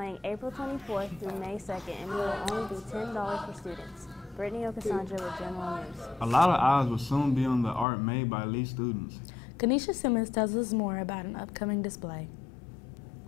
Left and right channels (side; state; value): right; drops out; at 7.9 s